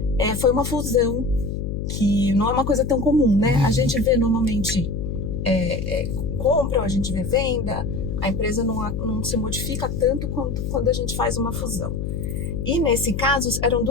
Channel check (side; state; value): left; noise; hum, 4 dB below the sound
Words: foi uma fusão que não é uma coisa tão comum, né? A gente vê normalmente compra, a gente vê venda, a empresa não se modifica tanto quanto quando a gente faz uma fusão. E nesse caso, eram